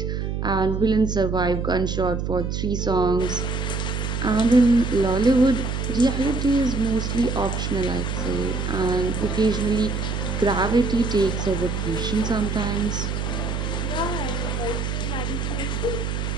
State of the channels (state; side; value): noise; right; hum, 2 dB below the sound